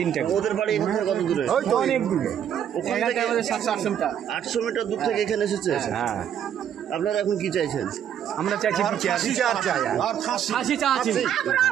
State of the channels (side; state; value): left; quieter; 9.4 dB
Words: ওদের বাড়ি কত দূরে? অনেক দূরে, 800 মিটার দূর থেকে এখানে এসেছে। হ্যাঁ। আপনারা এখন কি চাইছেন? আমরা চাইছি